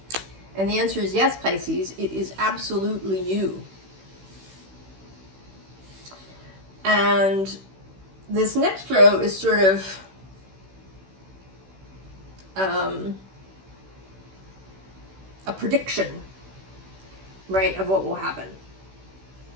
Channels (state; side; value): late; left; 16 ms